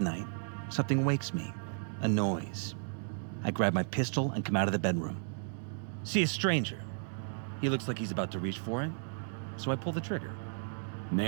something wakes me. A noise. I grab my pistol and come out of the bedroom. See a stranger. He looks like he's about to reach for it, so I pull the trigger.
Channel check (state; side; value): silent; left; digital silence